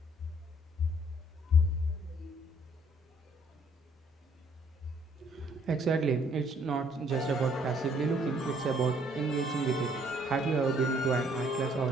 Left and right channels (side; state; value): both; normal; correlation 0.64